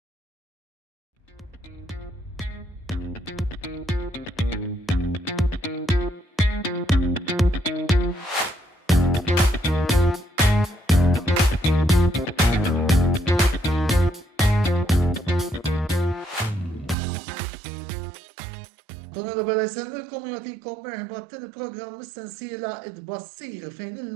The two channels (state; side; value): drops out; left; at 16.9 s